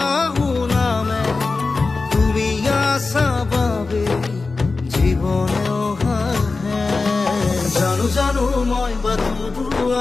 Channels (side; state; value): right; quieter; 3.9 dB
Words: নামে তুমি আসা বাবে জীবনেও হাহে জানো জানো মই